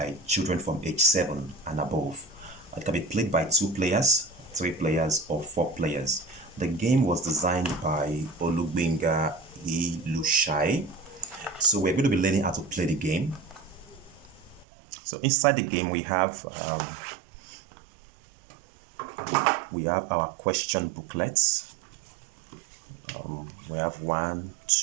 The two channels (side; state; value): left; drops out; at 14.7 s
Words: children from age 7 and above. It can be played by 2 players, 3 players, or 4 players. The game was designed by Olugbenga Ilushai. So we're going to be learning how to play the game. So inside the game we have our question booklets. We have 1,